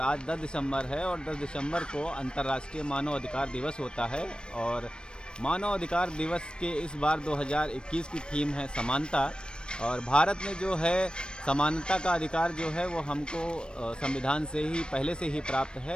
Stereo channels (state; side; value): late; right; 0.053 ms